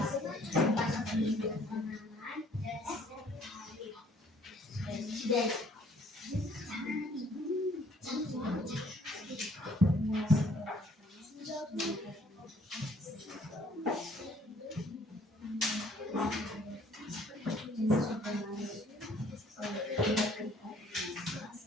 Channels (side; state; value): both; normal; correlation 0.60